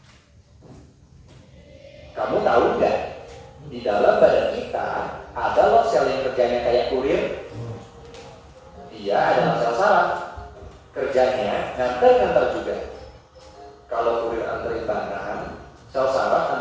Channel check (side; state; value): both; identical; correlation 1.00